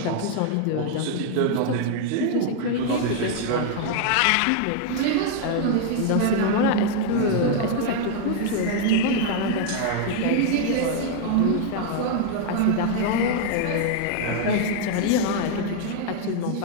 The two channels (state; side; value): different; both; correlation 0.00